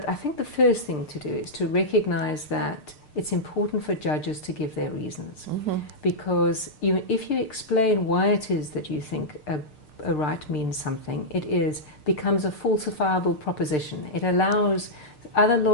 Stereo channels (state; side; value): late; right; 6.7 ms